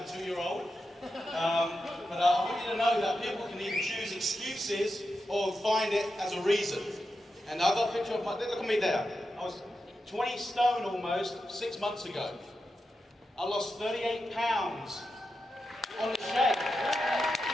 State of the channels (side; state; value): both; normal; correlation 0.89